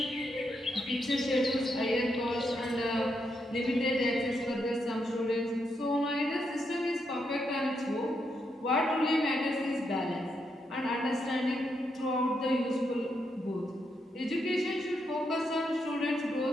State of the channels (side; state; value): both; normal; correlation 0.80